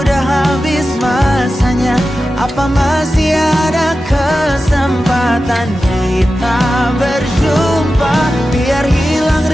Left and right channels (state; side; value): normal; both; correlation 0.93